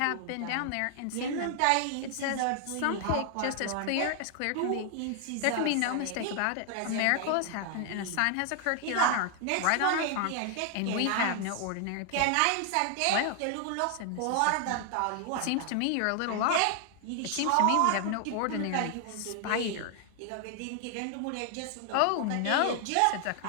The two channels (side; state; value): both; different; correlation 0.00